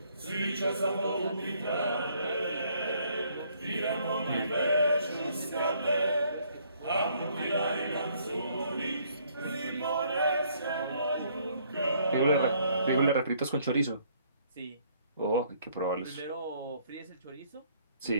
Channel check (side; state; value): both; inverted; correlation -0.65